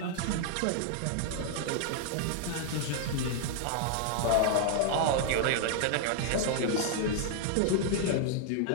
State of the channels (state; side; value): different; both; correlation 0.00